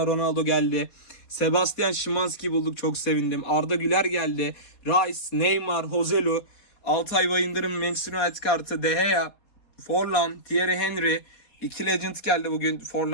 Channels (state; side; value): late; right; 4.2 ms